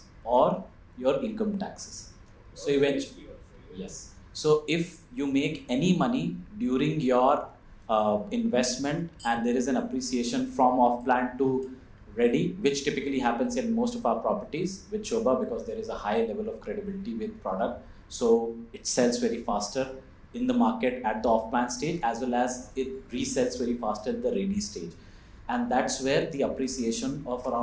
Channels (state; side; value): identical; both; correlation 1.00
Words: or your income taxes. So eventually, yes. So if you make any money during your investment and there is an appreciation from off-plan to ready, which typically happens in most of our properties with SOBHA, because there is a high level of credibility with product. So it sells very faster in the market at the off-plan stage, as well as it resells very faster at the ready stage. And that's where the appreciation of